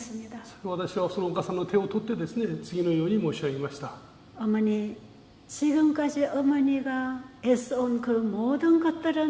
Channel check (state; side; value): identical; both; correlation 1.00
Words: 私はそのお母さんの手を取ってですね、次のように申し上げました。 어머니, 지금까지 어머니가 애써온 그 모든